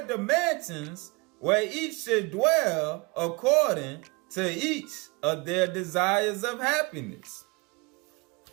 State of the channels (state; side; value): quieter; left; 27.9 dB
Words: the mansions where each should dwell according to each of their desires of happiness.